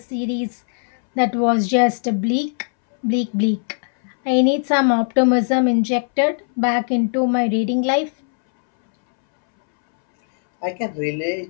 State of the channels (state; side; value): silent; right; 65 dB below the other